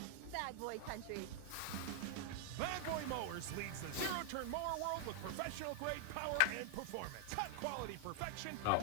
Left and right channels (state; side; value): different; both; correlation 0.00